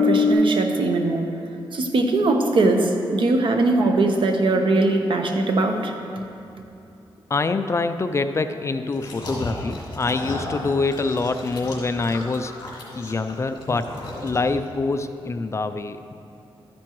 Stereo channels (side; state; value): both; normal; correlation 0.71